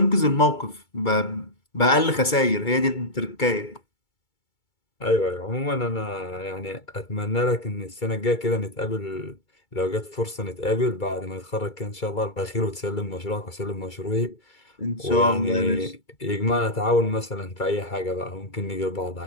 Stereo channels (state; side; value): late; right; 2.3 ms